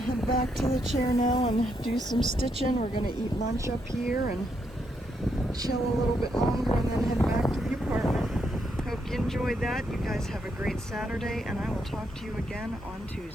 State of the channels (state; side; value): normal; both; correlation 0.78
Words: Back to the chair now and do some stitching. We're going to eat lunch up here and chill a little bit longer and then head back to the apartment. Hope you enjoyed that. You guys have a great Saturday, and I will talk to you again on